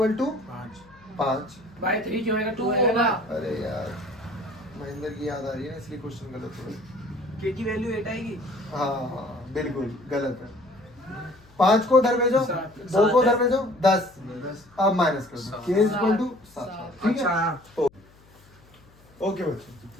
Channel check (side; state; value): left; noise; hum, 27 dB below the sound